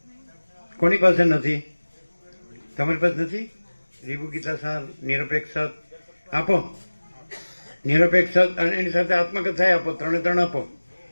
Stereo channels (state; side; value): inverted; both; correlation -1.00